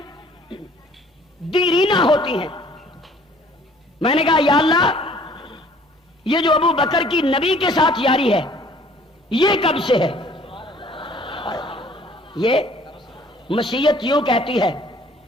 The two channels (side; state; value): both; normal; correlation 0.56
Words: دیرینہ ہوتی ہیں. میں نے کہا یا اللہ، یہ جو ابو بکر کی نبی کے ساتھ یاری ہے یہ کب سے ہے؟ یہ مشیت یوں کہتی ہے.